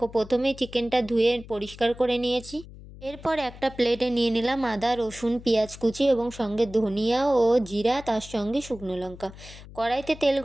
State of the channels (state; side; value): noise; left; hum, 17 dB below the sound